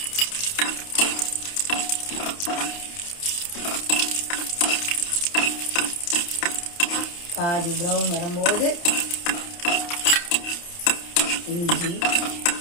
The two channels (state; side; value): late; right; 29 ms